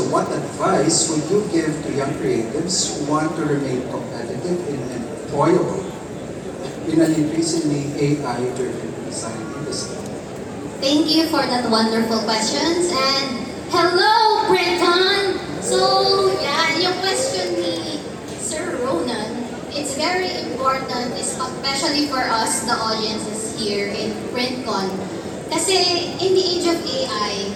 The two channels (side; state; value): both; identical; correlation 1.00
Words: what advice would you give to young creatives who want to remain competitive and employable in an increasingly AI-driven design industry? Thank you for that wonderful questions. And hello, Brenton! So, yeah, yung question ni Sir Ronan, it's very important, especially for us, the audiences here in PrintCon. Kasi in the age of AI,